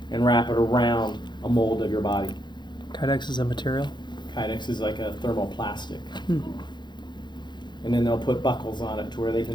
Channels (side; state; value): right; late; 0.21 ms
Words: and wrap it around a mold of your body. Kydex is a material. Kydex is like a thermoplastic. Hmm. And then they'll put buckles on it to where they